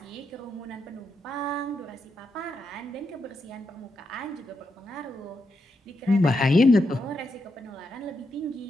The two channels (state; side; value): normal; both; correlation 0.83